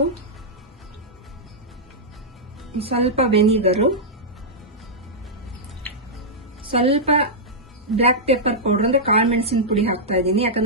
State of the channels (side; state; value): both; normal; correlation -0.09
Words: ಸ್ವಲ್ಪ ವೆನಿಗರು, ಸ್ವಲ್ಪ ಬ್ಲಾಕ್ ಪೆಪ್ಪರ್ ಪೌಡರ್ ಅಂದ್ರೆ ಕಾಳು ಮೆಣಸಿನ ಪುಡಿ ಹಾಕ್ತಾ ಇದ್ದೀನಿ.